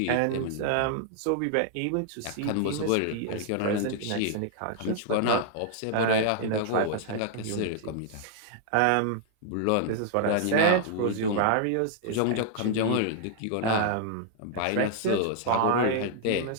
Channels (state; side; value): different; both; correlation 0.00